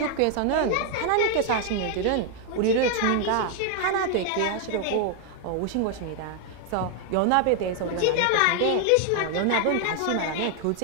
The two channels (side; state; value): both; different; correlation 0.00